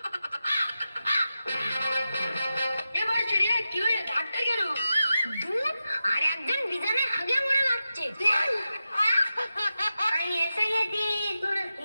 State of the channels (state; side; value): inverted; both; correlation -0.91